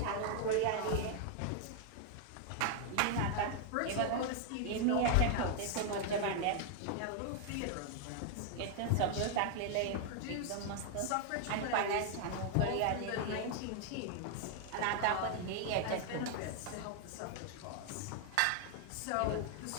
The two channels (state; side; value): different; both; correlation 0.00